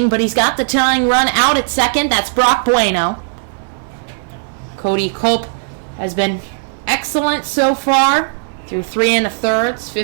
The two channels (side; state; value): left; silent; digital silence